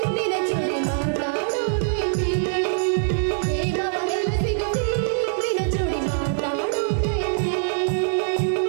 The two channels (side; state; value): left; silent; digital silence